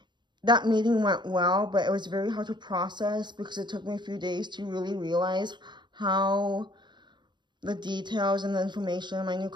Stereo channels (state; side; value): late; left; 0.22 ms